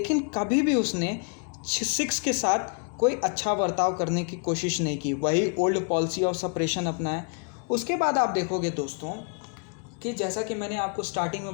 कभी भी उसने सिख्स के साथ कोई अच्छा बर्ताव करने की कोशिश नहीं की, वही ओल्ड पॉलिसी ऑफ सेपरेशन अपनाया। उसके बाद आप देखोगे दोस्तों कि जैसा कि मैंने आपको स्टार्टिंग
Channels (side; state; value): right; quieter; 38.4 dB